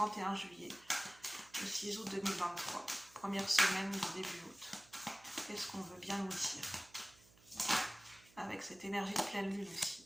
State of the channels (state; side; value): noise; right; hum, 26 dB below the sound